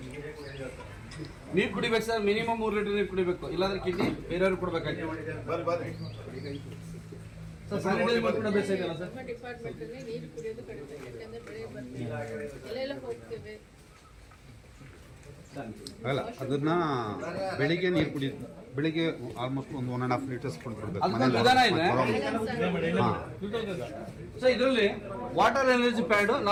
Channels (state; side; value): identical; both; correlation 1.00